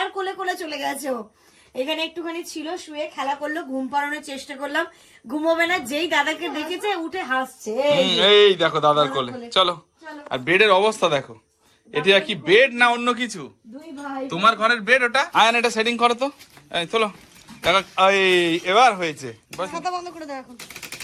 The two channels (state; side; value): identical; both; correlation 1.00